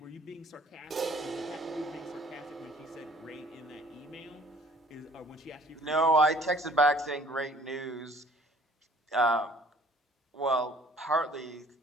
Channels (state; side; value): normal; both; correlation 0.54